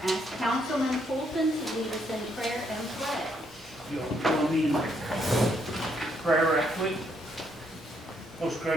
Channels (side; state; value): both; normal; correlation 0.73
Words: ask Councilman Fulton to lead us in prayer and pledge. You'll join me in prayer right quick. Most